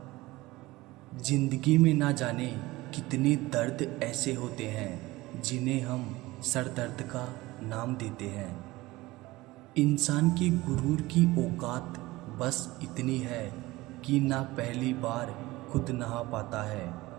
जिंदगी में ना जाने कितने दर्द ऐसे होते हैं जिन्हें हम सर दर्द का नाम देते हैं। इंसान के गुरूर की औकात बस इतनी है कि ना पहली बार खुद नहा पाता है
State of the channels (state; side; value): quieter; left; 19.6 dB